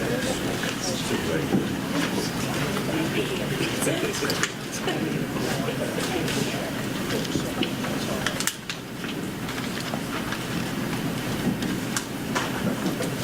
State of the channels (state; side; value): identical; both; correlation 1.00